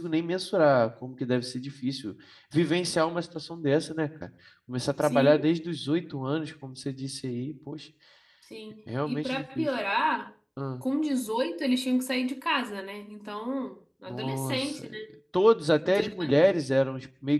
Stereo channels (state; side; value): identical; both; correlation 1.00